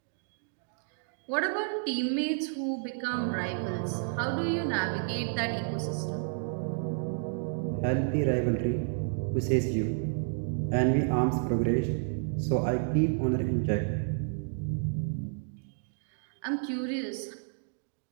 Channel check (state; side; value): silent; left; digital silence